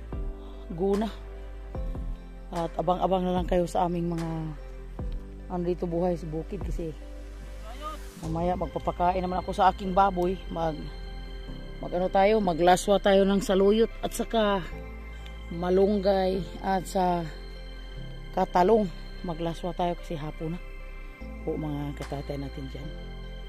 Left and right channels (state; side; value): identical; both; correlation 1.00